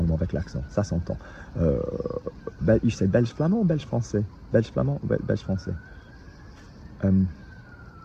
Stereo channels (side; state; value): both; identical; correlation 1.00